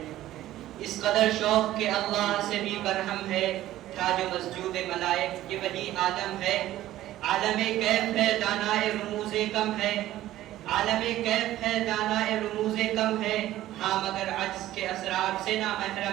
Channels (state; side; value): quieter; left; 14.3 dB